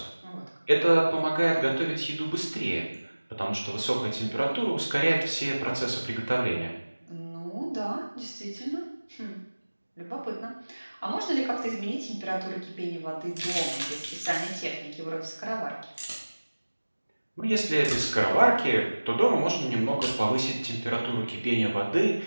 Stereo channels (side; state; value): both; inverted; correlation -1.00